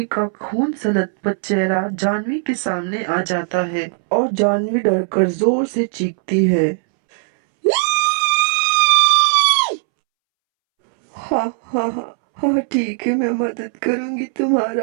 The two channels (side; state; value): left; silent; 67 dB below the other